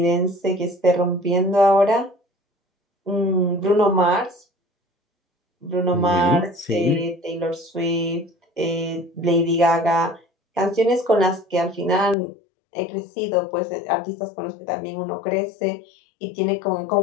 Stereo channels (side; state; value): right; drops out; at 12.2 s